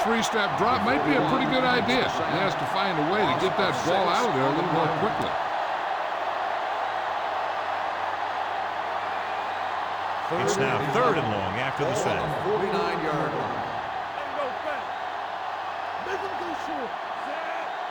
three-step drop might be a pretty good idea. He has to find a way to get that ball out of there a little more quickly. It's now third and long after the set. 49-yard line.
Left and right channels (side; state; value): both; identical; correlation 1.00